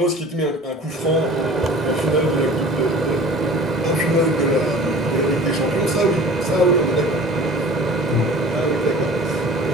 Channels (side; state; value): both; normal; correlation 0.43